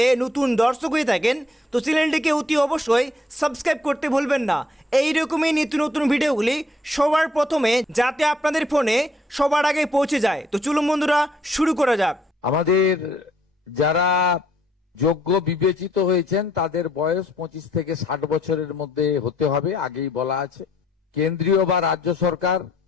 নতুন দর্শক হয়ে থাকেন তো চ্যানেলটিকে অতি অবশ্যই সাবস্ক্রাইব করতে ভুলবেন না, এই রকমই নিত্য নতুন ভিডিওগুলি সবার প্রথমে যাতে আপনাদের ফোনে সবার আগে পৌঁছে যায়। তো চলুন বন্ধুরা শুরু করা যাক। আমাদের যারা যোগ্য বিবেচিত হয়েছেন তাদের বয়স 25 থেকে 60 বছরের মধ্যে হতে হবে, আগেই বলা আছে। কেন্দ্রীয় বা রাজ্য সরকার,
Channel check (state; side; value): normal; both; correlation 0.67